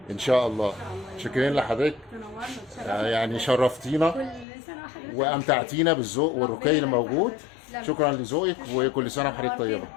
ان شاء الله. شكرا لحضرتك، تنورنا وتشرفنا. يعني شرفتينا كل سنه وحضرتك وامتعتينا بالذوق والرقي اللي موجود. تسلم. شكرا لذوقك، وكل سنه وحضرتك طيبه.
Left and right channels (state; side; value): drops out; right; at 4.5 s